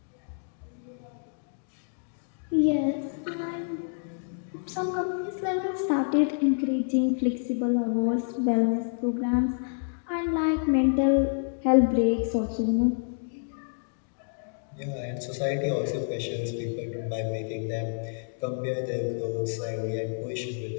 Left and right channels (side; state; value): right; silent; digital silence